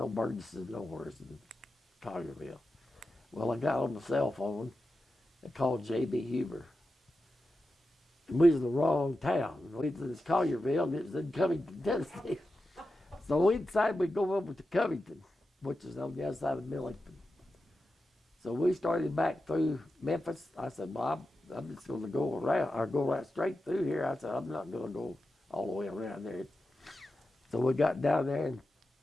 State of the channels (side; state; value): both; normal; correlation 0.91